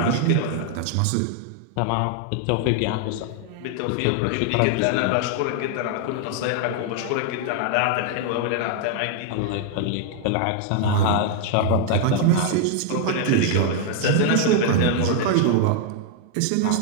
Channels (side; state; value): both; different; correlation 0.00